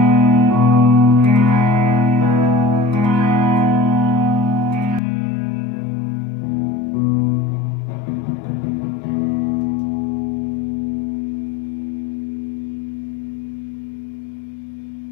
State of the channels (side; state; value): right; drops out; at 5.0 s